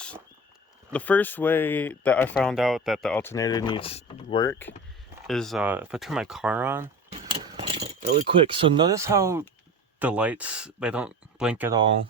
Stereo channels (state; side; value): normal; both; correlation 0.34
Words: way that I found out that the alternator needs work is if I turn my car on really quick. So notice how the lights, they don't blink at all.